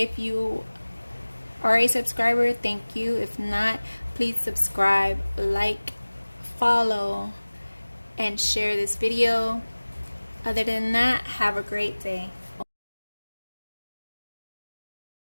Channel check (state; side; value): inverted; both; correlation -1.00